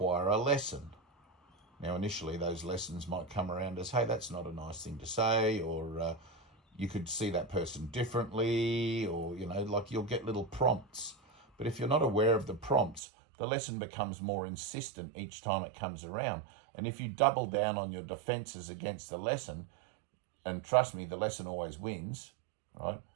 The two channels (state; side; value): drops out; left; at 13.0 s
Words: a lesson. Now, initially, those lessons might come around as, hey, that's not a nice thing to say, or you could see that person differently, or, like you'll get little prompts. But if you're not aware of the prompts, the lesson becomes more insistent each time it comes around. And if you double down on your defenses against the lesson, and trust me, the lesson always wins, right?